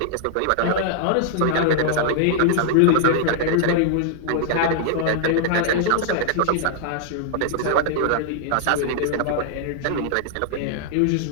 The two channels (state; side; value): different; both; correlation -0.01